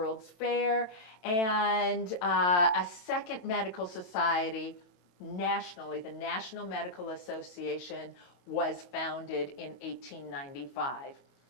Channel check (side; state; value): right; late; 31 ms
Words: Fair, and a second medical society nationally, the National Medical Association, was founded in 1895.